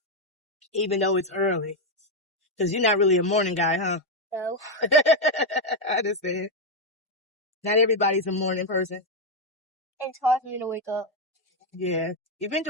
even though it's early. Because you're not really a morning guy, huh? No. I understand. Not everybody's a morning person. It's hard for me to wake up. Yeah, you've been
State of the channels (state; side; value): normal; both; correlation 0.03